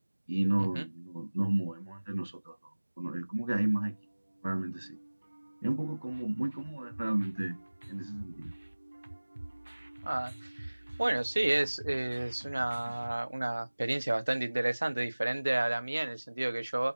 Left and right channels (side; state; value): both; inverted; correlation -1.00